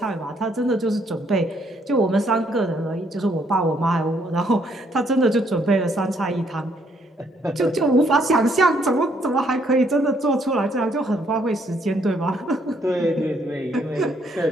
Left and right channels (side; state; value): both; normal; correlation 0.69